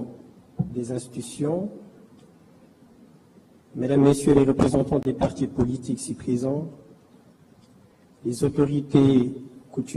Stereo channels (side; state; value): both; identical; correlation 1.00